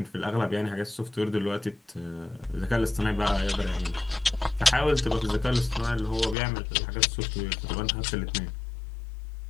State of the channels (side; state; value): right; drops out; at 6.4 s